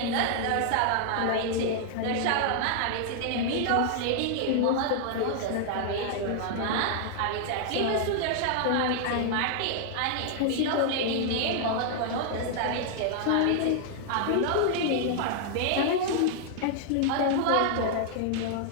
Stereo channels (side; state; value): both; different; correlation -0.01